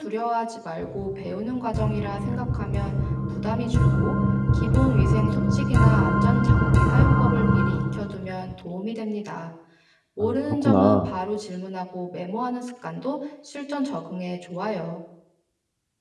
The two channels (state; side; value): identical; both; correlation 1.00